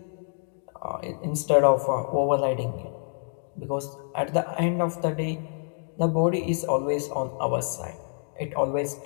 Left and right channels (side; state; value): right; silent; 60 dB below the other